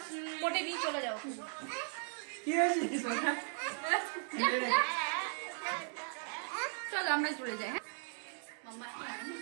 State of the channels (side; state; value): left; silent; 53 dB below the other